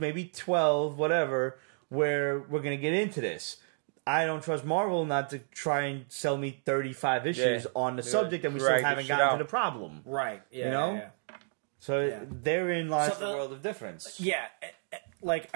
12, whatever, where we're going to get into this. I don't trust Marvel not to try and sell me 35 issues on the subject that we still haven't gotten to the problem. Right. Yeah, you know? So therein lies the world of difference. Yeah. like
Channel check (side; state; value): left; silent; 57 dB below the other